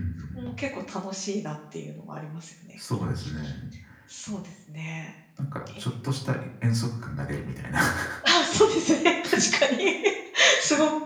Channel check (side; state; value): both; identical; correlation 1.00